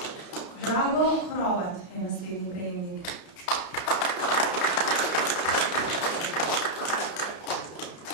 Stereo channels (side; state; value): right; late; 31 ms